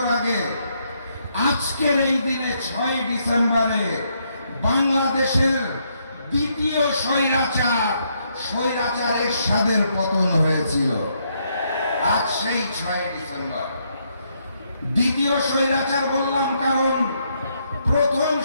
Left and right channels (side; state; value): both; inverted; correlation -0.75